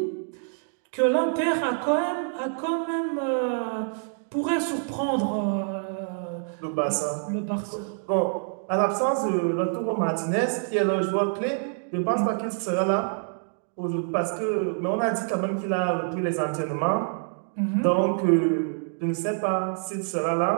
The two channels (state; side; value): silent; left; digital silence